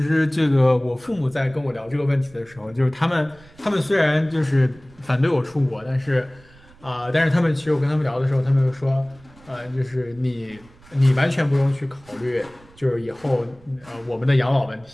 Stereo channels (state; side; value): noise; right; rumble, 26 dB below the sound